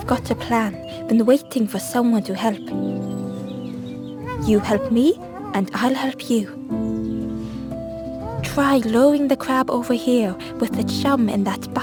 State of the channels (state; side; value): identical; both; correlation 1.00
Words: got a plan, been waiting for someone to help. You help me, and I'll help you. Try lowering the crab over here with the chum in that